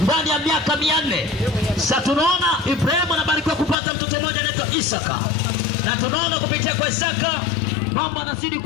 ndani ya miaka 400. Sasa tunaona Ibrahim anabarikiwa kupata mtoto mmoja anaitwa Isaka. Na tunaona kupitia kwa Isaka mambo yanazidi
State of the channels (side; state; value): right; drops out; at 3.8 s